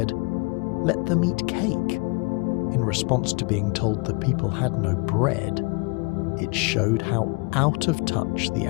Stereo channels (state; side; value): quieter; right; 30.1 dB